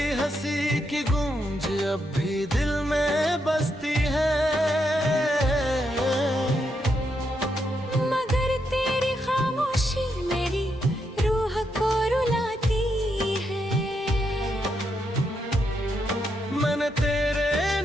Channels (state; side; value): normal; both; correlation 0.80